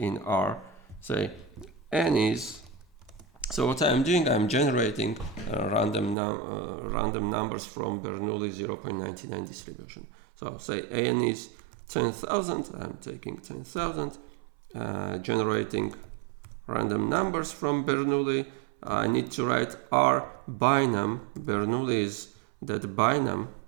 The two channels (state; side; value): drops out; left; at 6.2 s